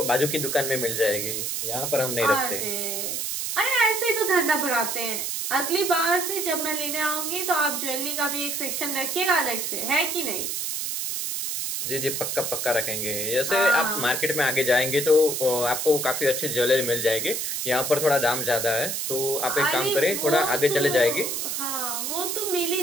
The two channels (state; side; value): noise; right; hiss, 2 dB below the sound